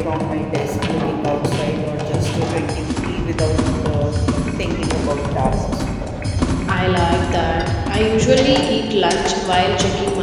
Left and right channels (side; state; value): both; identical; correlation 1.00